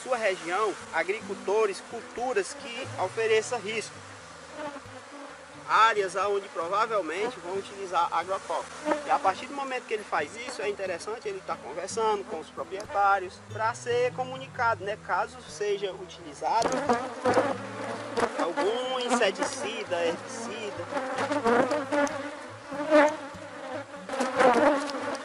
região agricultores, culturas que ofereçam risco. Áreas onde provavelmente vão utilizar agrotóxicos. E a partir do momento que ele faz isso, é interessante ele estar conversando com os proprietários para ser comunicado, né? Caso seja utilizado algum inseticida, herbicida.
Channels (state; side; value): identical; both; correlation 1.00